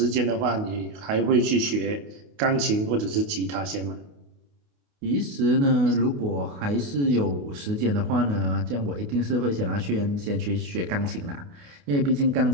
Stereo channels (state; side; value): late; left; 28 ms